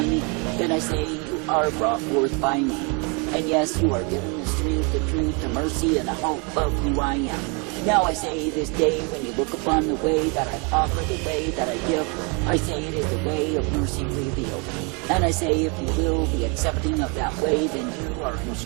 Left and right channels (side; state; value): left; quieter; 33.0 dB